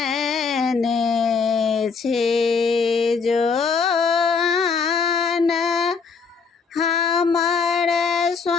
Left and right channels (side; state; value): right; quieter; 5.3 dB